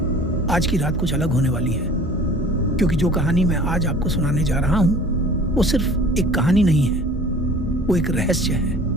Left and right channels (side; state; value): both; normal; correlation 0.46